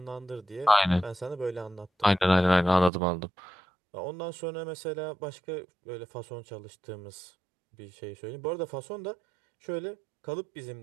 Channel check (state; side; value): drops out; left; at 2.9 s